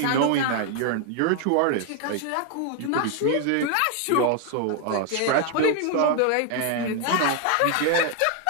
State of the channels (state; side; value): different; both; correlation 0.00